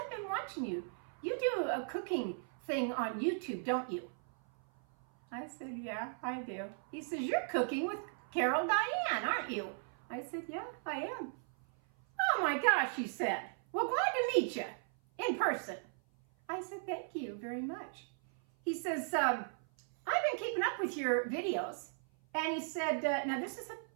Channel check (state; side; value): silent; left; 53 dB below the other